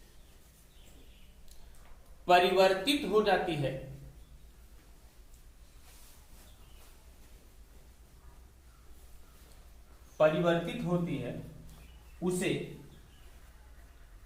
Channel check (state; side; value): identical; both; correlation 1.00